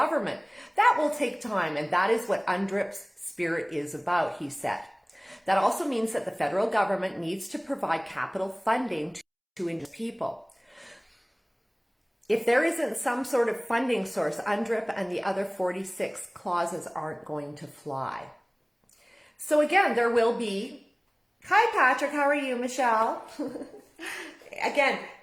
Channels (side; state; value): both; identical; correlation 1.00